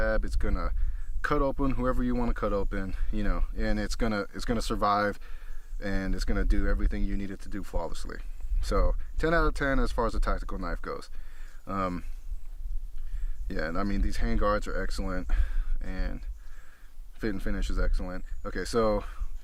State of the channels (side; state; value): both; identical; correlation 1.00